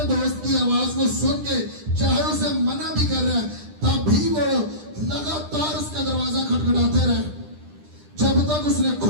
दोस्त की आवाज को सुन के चाहे उसे मना भी कर रहा है, तब भी वो लगातार उसका दरवाजा खटखटाते रहे जब तक उसने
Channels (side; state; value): left; late; 9.9 ms